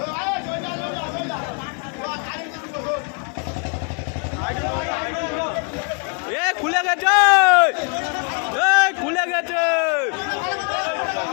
খুলে গেছে খুলে গেছে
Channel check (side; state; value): right; quieter; 37.0 dB